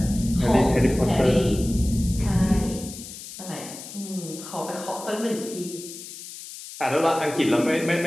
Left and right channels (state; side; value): noise; left; hiss, 13 dB below the sound